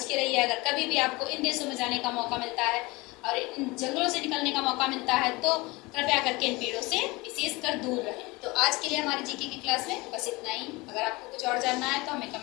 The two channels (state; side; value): quieter; right; 23.4 dB